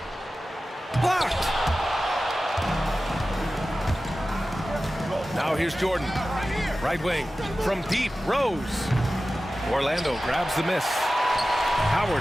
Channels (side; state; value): both; normal; correlation 0.95